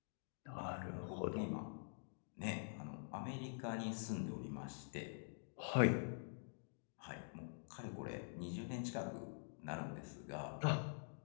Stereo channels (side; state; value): right; silent; digital silence